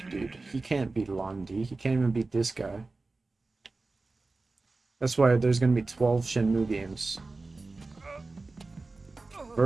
dude. He can't beat Londi. He can't even beat this guy. That's why there's gonna be 12 Shenmue games.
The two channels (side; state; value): left; quieter; 3.5 dB